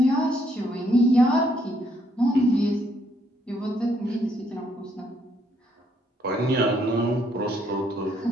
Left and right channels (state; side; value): normal; both; correlation 0.71